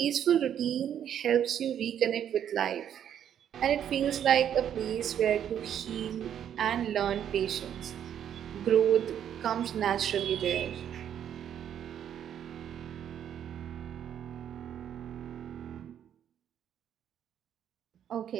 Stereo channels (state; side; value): quieter; left; 9.6 dB